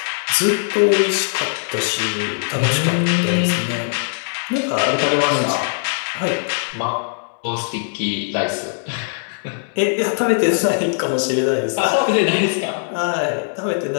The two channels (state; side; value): silent; right; digital silence